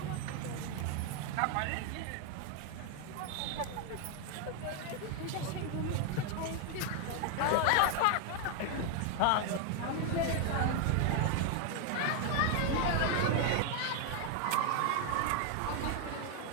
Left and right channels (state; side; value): different; both; correlation 0.01